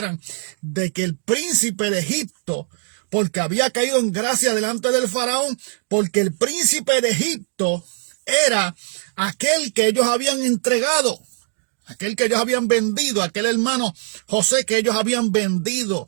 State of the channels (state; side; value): silent; left; digital silence